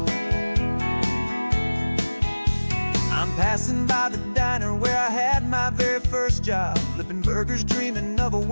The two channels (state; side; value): inverted; both; correlation -1.00